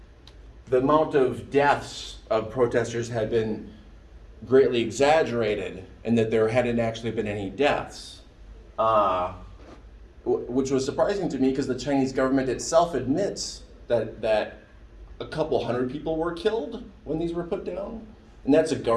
the amount of deaths of protesters had been greatly exaggerated, and that there hadn't actually been any deaths, which was surprising to me because the Chinese government itself admits that a couple hundred people were killed when these were put down, and that's a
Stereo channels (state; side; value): identical; both; correlation 1.00